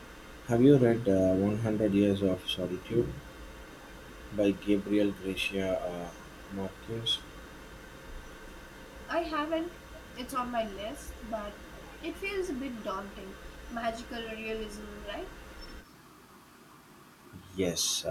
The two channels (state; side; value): identical; both; correlation 1.00